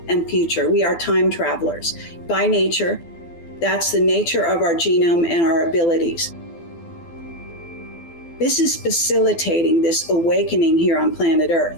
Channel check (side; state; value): right; late; 12 ms